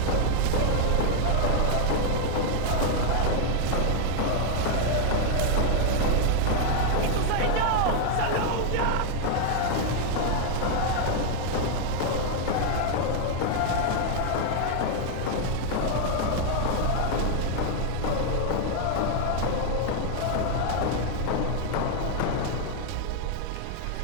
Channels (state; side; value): different; both; correlation 0.00